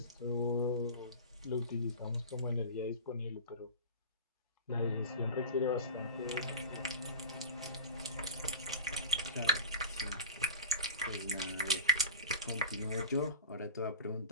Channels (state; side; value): inverted; both; correlation -0.33